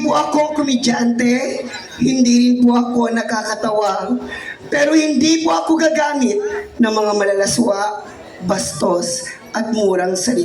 po ako komedyante, hindi rin po ako nakakatawa, pero hindi po ako gagamit ng mga malalaswa, bastos at murang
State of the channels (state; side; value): identical; both; correlation 1.00